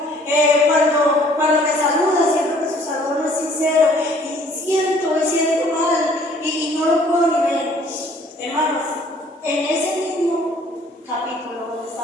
Cuando me saluda, siento que su saludo no es sincero, y siento mal, y no lo puedo ni ver. Hermanos, en ese mismo capítulo donde está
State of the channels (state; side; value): normal; both; correlation 0.57